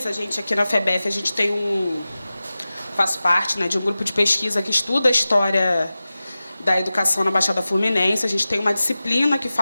A gente aqui na FEBEF, a gente tem faço parte, né, de um grupo de pesquisa que estuda a história da educação na Baixada Fluminense. A gente tem uma disciplina que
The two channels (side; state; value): both; inverted; correlation -0.96